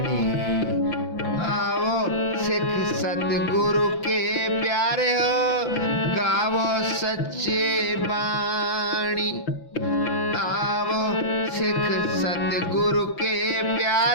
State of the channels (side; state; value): right; late; 5.9 ms